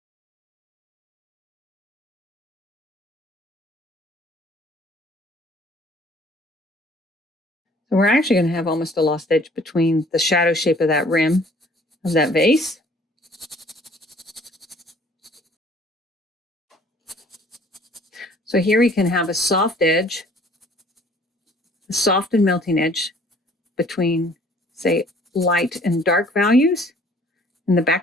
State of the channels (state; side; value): normal; both; correlation 0.56